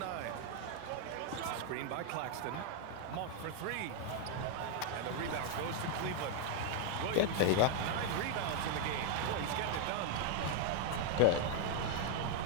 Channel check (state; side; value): different; both; correlation 0.00